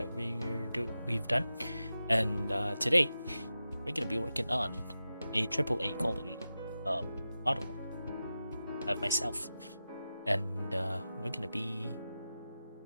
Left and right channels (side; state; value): both; inverted; correlation -0.92